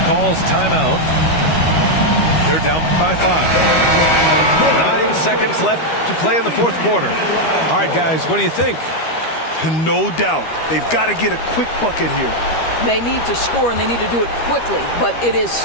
calls timeout. They're down by 5. 9 seconds left to play in the fourth quarter. All right, guys, what do you think? No doubt. They've got to get a quick bucket here. They need to score, and they need to do it quickly, but it is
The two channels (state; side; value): late; right; 13 ms